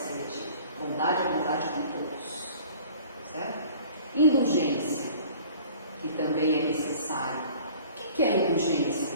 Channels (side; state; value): both; inverted; correlation -0.47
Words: seletiva, bondade é bondade com todos, certo? Indulgência, que também é necessário. O que é indulgência?